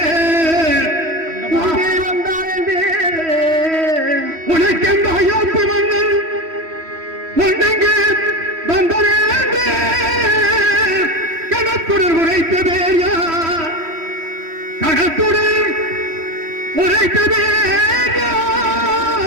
வந்தான் என்று உனக்கெந்த அயோத்தி மன்னன் ஒன்றெங்கு வந்தான் என்று கணத்துடன் உரைத்த வேயா, கணத்துடன் உரைத்த வேயா,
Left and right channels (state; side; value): late; left; 3.1 ms